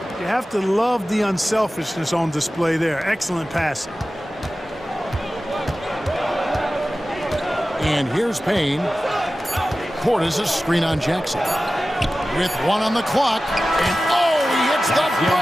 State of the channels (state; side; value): normal; both; correlation 0.95